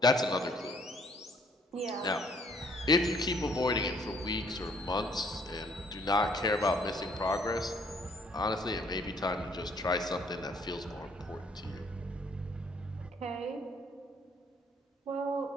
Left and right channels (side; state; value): both; normal; correlation 0.63